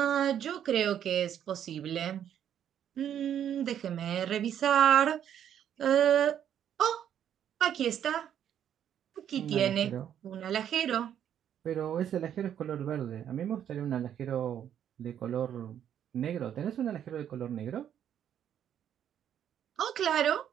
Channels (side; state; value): left; quieter; 9.7 dB